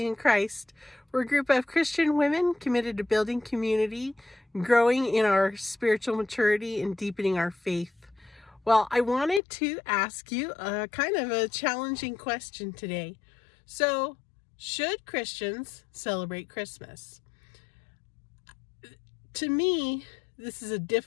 and Christ. We're a group of Christian women committed to building community, growing in our spiritual maturity, and deepening our faith. Well, I wanted to ask you a kind of a challenging question today. So, should Christians celebrate Christmas? To me, this is a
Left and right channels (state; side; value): drops out; right; at 9.4 s